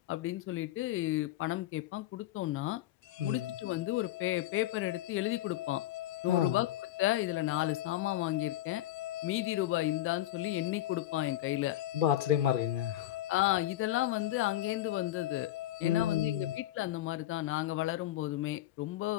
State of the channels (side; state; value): right; quieter; 14.2 dB